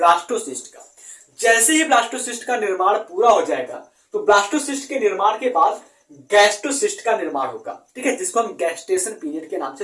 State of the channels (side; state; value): both; identical; correlation 1.00